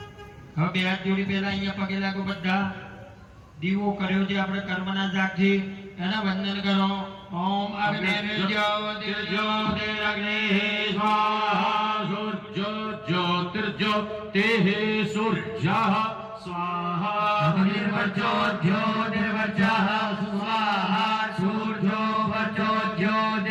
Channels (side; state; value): both; identical; correlation 1.00